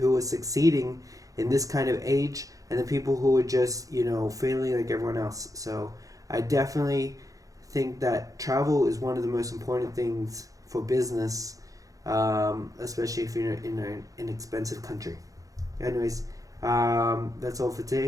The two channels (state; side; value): late; left; 0.17 ms